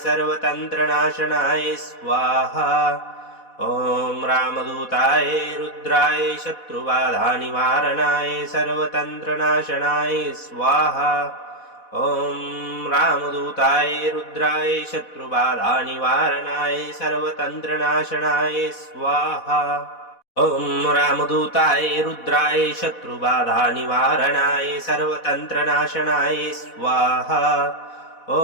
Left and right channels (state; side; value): late; right; 4.1 ms